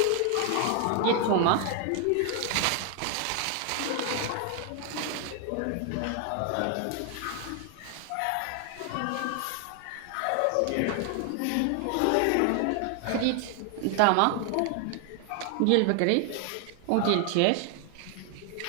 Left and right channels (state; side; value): different; both; correlation 0.00